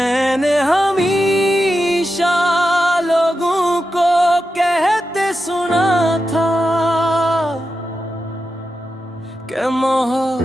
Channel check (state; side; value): normal; both; correlation 0.89